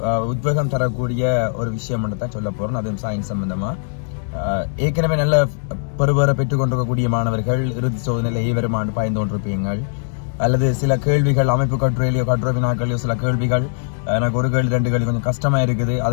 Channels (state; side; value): silent; right; digital silence